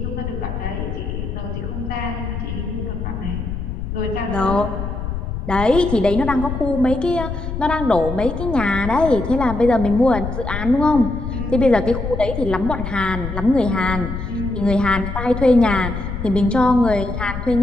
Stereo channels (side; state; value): left; noise; rumble, 6 dB below the sound